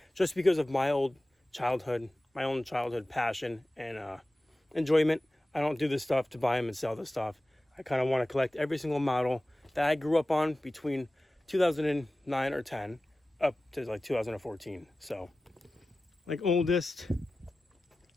just because of my own childhood passion and enjoyment. I don't do this stuff to buy them and sell this stuff. I kind of want to collect every single model that I grew up on between 2009 or 10 up to like 2014. So like oldest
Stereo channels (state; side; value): normal; both; correlation 0.96